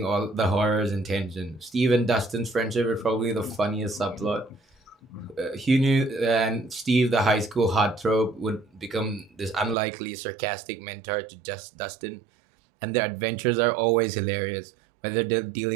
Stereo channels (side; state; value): left; drops out; at 9.8 s